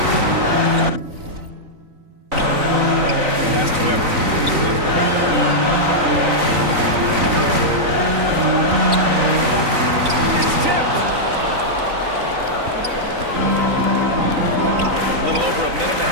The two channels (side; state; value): left; late; 3.9 ms